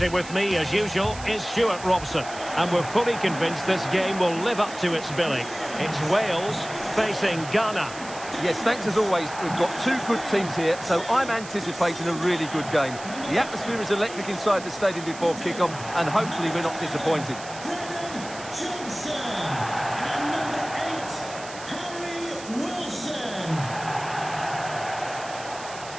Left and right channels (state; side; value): noise; right; hiss, 14 dB below the sound